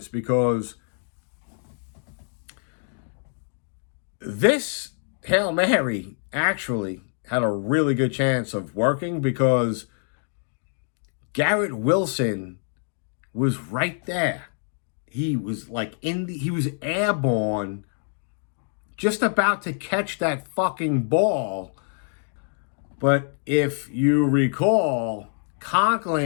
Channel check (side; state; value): right; silent; 61 dB below the other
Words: because this Hail Mary actually had a really good chance of working, because Garrett Wilson was right there. He was like he was airborne, just about to catch that fucking ball. But if you recall,